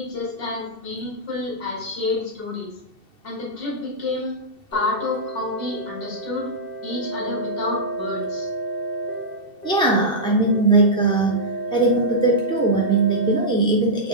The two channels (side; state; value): right; late; 2.7 ms